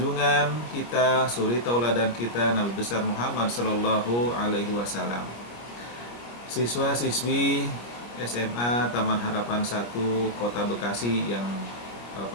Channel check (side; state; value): right; late; 25 ms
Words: kita, suri tauladan kita, Nabi besar Muhammad Sallallahu Alaihi Wasallam. Siswa-siswi SMA Taman Harapan 1 Kota Bekasi yang